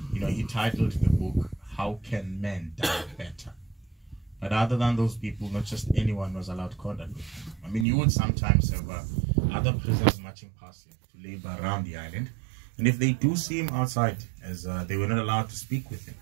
You know, he titled the book, How Can Men Die Better? But other than those people, not just anyone was allowed contact with him. I mean, you would sometimes have other prisoners marching past him to labor around the island. And if they do see him outside, as they were not allowed to speak with him,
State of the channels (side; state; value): left; drops out; at 7.9 s